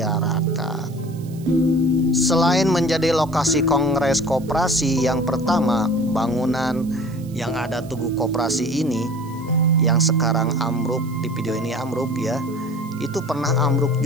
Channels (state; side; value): noise; right; hiss, 24 dB below the sound